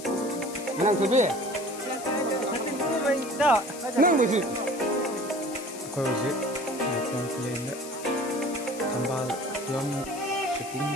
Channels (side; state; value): left; noise; hiss, 13 dB below the sound